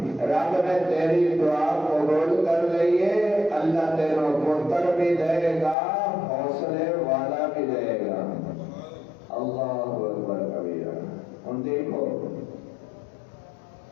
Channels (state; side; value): drops out; right; at 5.8 s